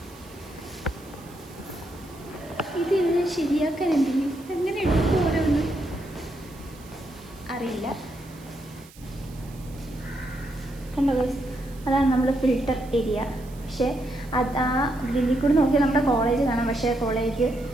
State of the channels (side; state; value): right; noise; hiss, 23 dB below the sound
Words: ഇത് ശരിയാക്കാൻ എന്തെങ്കിലും എങ്ങനെ എടുക്കുമോ അറിയില്ല. കണ്ടോ ഗൈസ്, അതാണ് നമ്മുടെ ഫിൽട്ടർ ഏരിയ. പക്ഷേ അത് ആ ഗ്രില്ലിൽ കൂടി നോക്കിയാൽ നമ്മുടെ കോളേജ് കാണാം. പക്ഷേ കോളേജ്